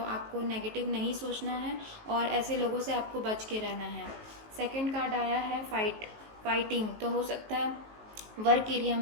आपको नेगेटिव नहीं सोचना है और ऐसे लोगों से आपको बच के रहना है। सेकंड कार्ड आया है फाइटिंग, तो हो सकता है वर्क एरिया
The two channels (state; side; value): late; left; 19 ms